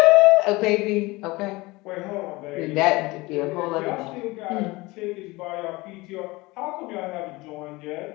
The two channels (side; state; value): right; quieter; 22.2 dB